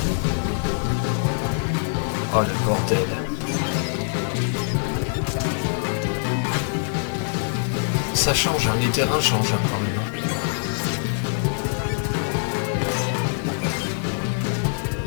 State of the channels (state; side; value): silent; right; 56 dB below the other